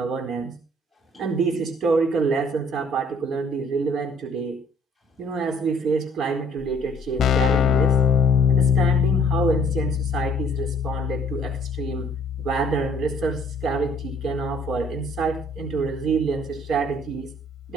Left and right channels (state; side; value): normal; both; correlation 0.59